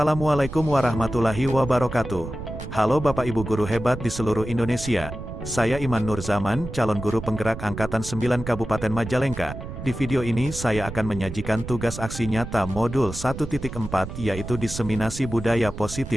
warahmatullahi wabarakatuh. Halo Bapak Ibu guru hebat di seluruh Indonesia. Saya Iman Nur Zaman, calon guru penggerak Angkatan 9 Kabupaten Majalengka. Di video ini saya akan menyajikan tugas aksi nyata modul 1.4 yaitu diseminasi budaya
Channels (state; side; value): noise; right; rumble, 9 dB below the sound